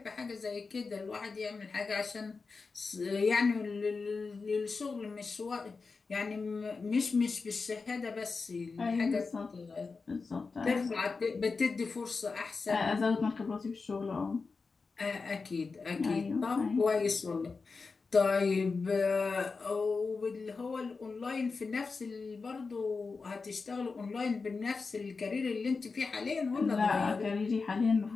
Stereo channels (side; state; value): right; quieter; 4.4 dB